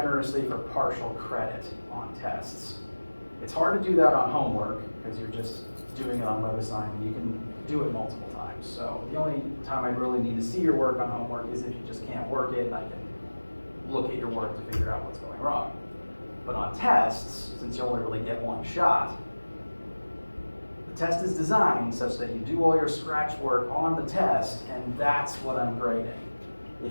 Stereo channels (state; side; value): inverted; both; correlation -1.00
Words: for partial credit on tests. It's hard to do that on homework because you're just doing it on WebAssign. You can do it multiple times. So the only time I really need to see your work on homework is if you just can't work it, and I can look at your work to figure out what's going wrong. But on tests, since you only really get 1 shot, the test is designed such that you do all your scratch work on the test, and that's what I'm grading.